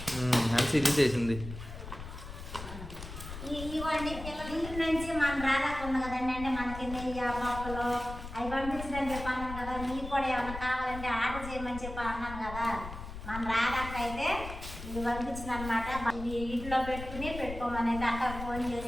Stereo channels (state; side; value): noise; left; rumble, 10 dB below the sound